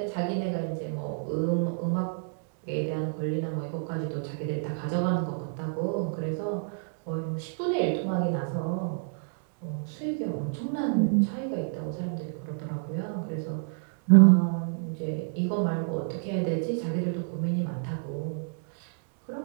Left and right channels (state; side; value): silent; left; digital silence